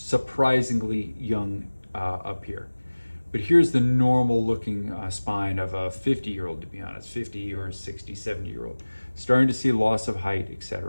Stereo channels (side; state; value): both; inverted; correlation -1.00